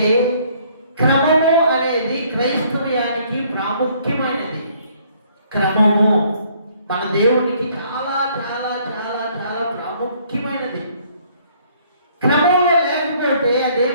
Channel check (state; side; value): inverted; both; correlation -0.62